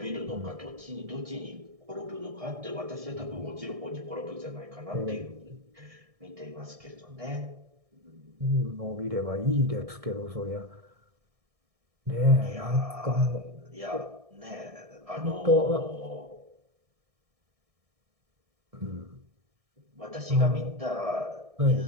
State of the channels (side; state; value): left; late; 1.6 ms